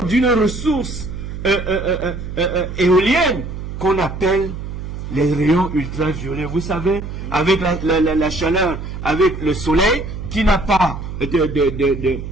d'une ressource éolienne qu'on appelle les rayons ultraviolets. Vous savez, avec la chaleur, avec le soleil, qui n'a pas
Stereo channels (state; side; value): noise; right; hum, 8 dB below the sound